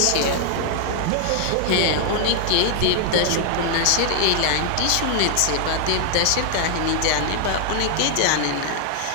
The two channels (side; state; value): both; different; correlation 0.00